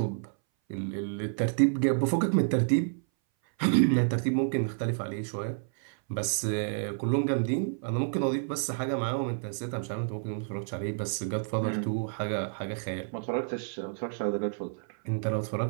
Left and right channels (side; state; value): left; silent; 58 dB below the other